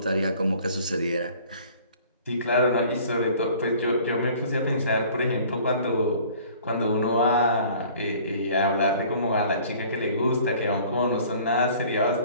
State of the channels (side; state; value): both; inverted; correlation -0.51